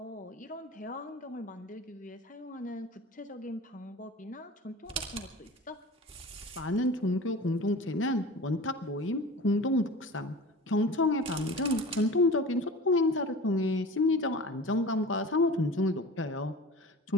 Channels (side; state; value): both; normal; correlation 0.37